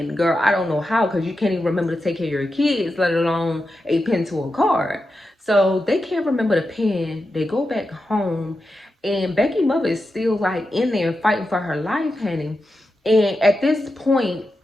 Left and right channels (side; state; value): both; normal; correlation 0.89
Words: Girl, I don't know how, because you can't even remember to take care of your kids, let alone a pin to a card. So they can't remember the pin. They go back home, and Becky's mother is still like in there fighting for her life, honey. And at this point,